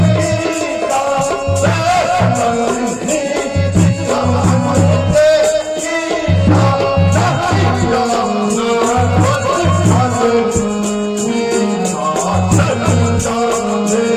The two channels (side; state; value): both; identical; correlation 1.00